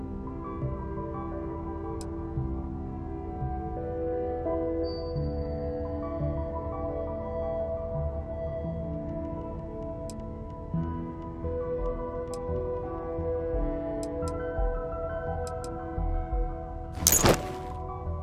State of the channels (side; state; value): both; identical; correlation 1.00